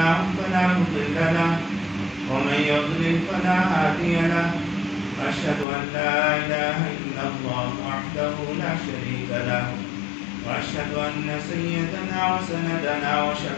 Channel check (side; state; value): right; drops out; at 5.7 s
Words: فلا مضل له ومن يضلل فلا هادي له أشهد أن لا إله إلا الله وحده لا شريك له وأشهد أن سيدنا وسندنا